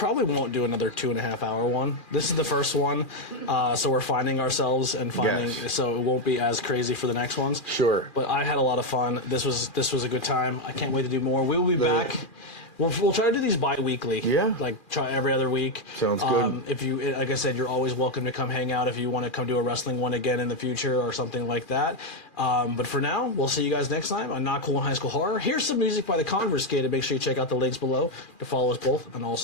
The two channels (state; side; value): late; right; 2.4 ms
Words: won't do another 2.5 hour one. This is the first one, so we're finding ourselves and finding. Yes. So it won't be as crazy for the next ones. Sure. But I had a lot of fun. This was a good time. I can't wait to do more. We will be back. We'll try to do these bi-weekly. Yeah. Like try every other week. Sounds good. If you, like I said, you're always welcome to come hang out if you want to come do a wrestling one again in the future or something like that. But for now, we'll see you guys next time on Not Cool in High School Horror. Here's some music by the Conversated. Make sure you check out the links below to follow us both on all